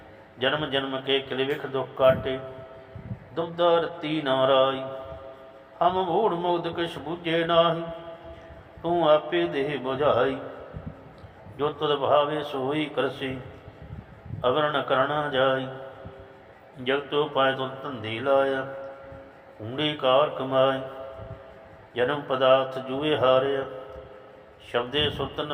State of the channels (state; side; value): identical; both; correlation 1.00